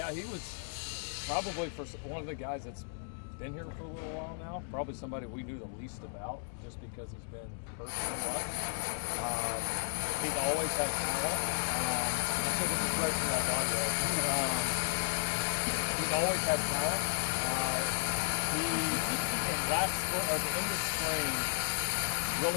he was probably one of the guys that's been here for a little while now. Probably somebody we knew the least about, just because he's been hurt so much. He's always had talent. I think this is great for that audio. He's always had talent. He, at the end of spring,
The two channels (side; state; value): right; silent; digital silence